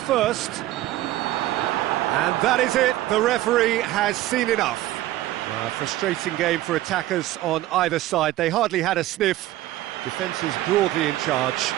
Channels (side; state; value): left; quieter; 15.4 dB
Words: And that is it. The referee has seen enough. A frustrating game for attackers on either side. They hardly had a sniff. Defence is broadly in charge,